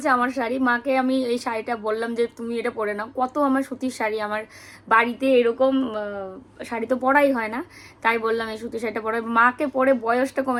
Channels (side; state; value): both; identical; correlation 1.00